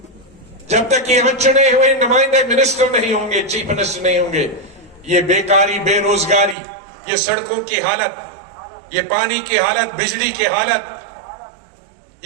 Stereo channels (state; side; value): drops out; left; at 6.6 s